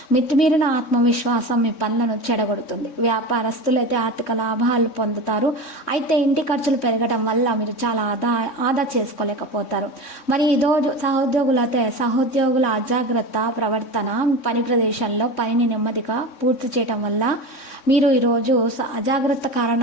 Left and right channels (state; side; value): late; right; 3.6 ms